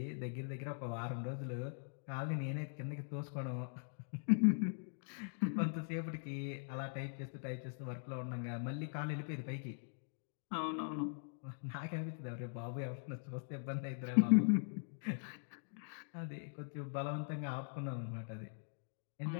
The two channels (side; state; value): right; silent; digital silence